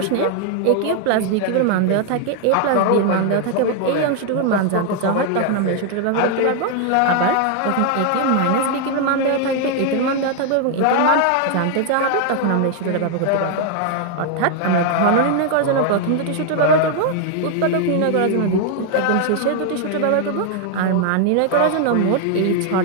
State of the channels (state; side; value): different; both; correlation 0.00